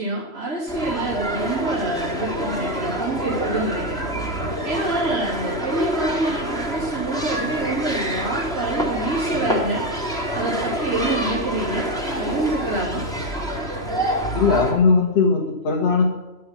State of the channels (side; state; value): right; late; 3.0 ms